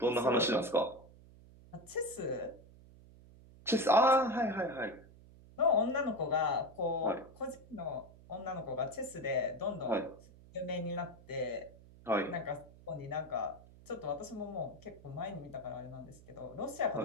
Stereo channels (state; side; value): noise; right; hum, 21 dB below the sound